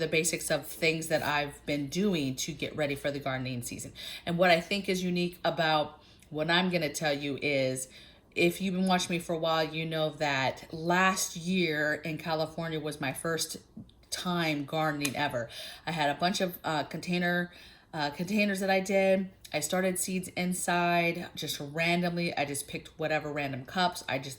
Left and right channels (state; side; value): identical; both; correlation 1.00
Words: basics of things that I've been doing to get ready for the gardening season. And what I think is unique about what I'm going to tell you is, if you've been watching me for a while, you know that last year in California was my first time gardening ever. I had a bunch of containers that I did. I started seeds inside just randomly. I just picked whatever random cups. I